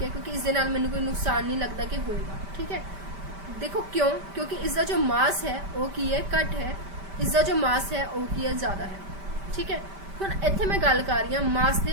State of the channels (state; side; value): late; left; 5.1 ms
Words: है, क्योंकि इस दे नाल मैनू कोई नुकसान नहीं लगता कि होएगा, ठीक है। देखो क्यों? क्योंकि इसका जो मास है वो की है घट है, इसका जो मास है वो की है ज़्यादा है, ठीक है। हुण इत्थे मैं गल कर रही हूँ मास